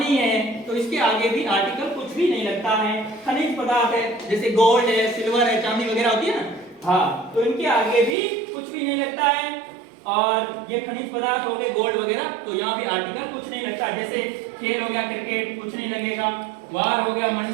है, तो इसके आगे भी आर्टिकल कुछ भी नहीं लगता है। खनिज पदार्थ है, जैसे गोल्ड है, सिल्वर है, चांदी वगैरह होती है ना, हाँ, तो इनके आगे भी कुछ भी नहीं लगता है। और ये खनिज पदार्थ हो गए, गोल्ड वगैरह, तो यहाँ भी आर्टिकल कुछ नहीं लगता। जैसे खेल हो गया क्रिकेट, कुछ नहीं लगेगा। वार हो गया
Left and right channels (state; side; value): drops out; left; at 8.2 s